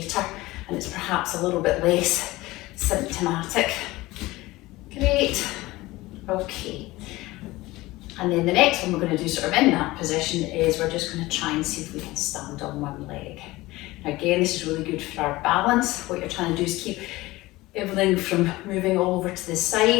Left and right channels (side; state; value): right; quieter; 19.3 dB